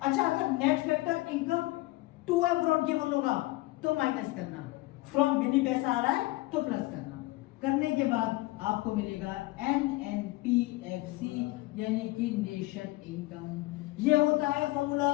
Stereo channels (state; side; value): quieter; right; 19.8 dB